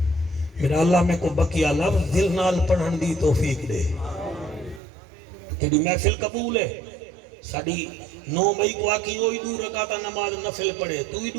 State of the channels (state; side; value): drops out; left; at 4.8 s